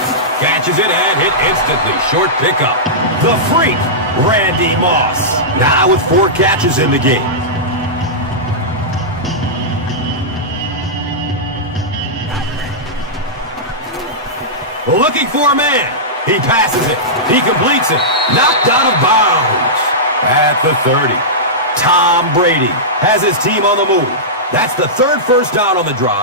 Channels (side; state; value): both; normal; correlation -0.13